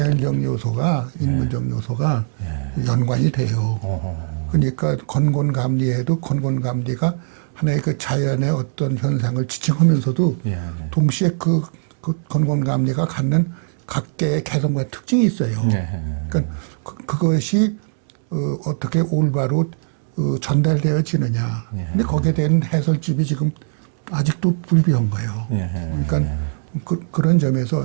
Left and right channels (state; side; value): silent; left; digital silence